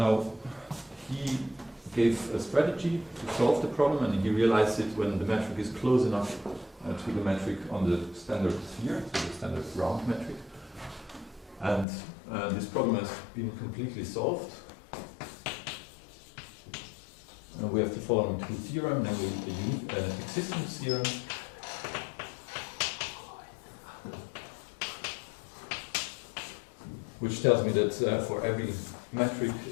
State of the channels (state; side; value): drops out; right; at 11.9 s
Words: he gave a strategy to solve the problem, and he realized it when the metric is close enough to the metric on the standard sphere, so the standard round metric. And this problem has been completely solved. We have the following two theorems, namely the existence theorem which tells me that for every metric,